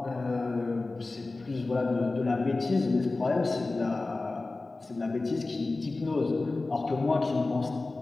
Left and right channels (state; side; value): quieter; right; 3.3 dB